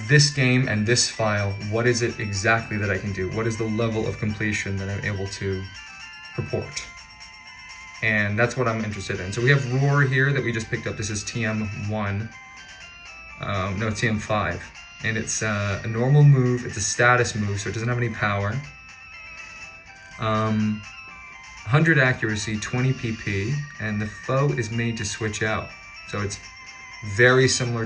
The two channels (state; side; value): identical; both; correlation 1.00